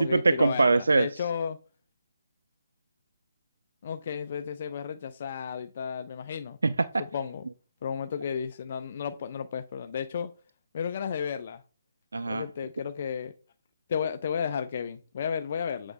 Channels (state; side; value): inverted; both; correlation -0.83